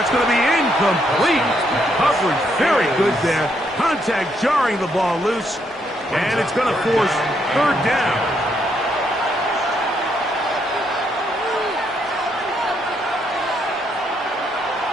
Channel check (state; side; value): normal; both; correlation 0.75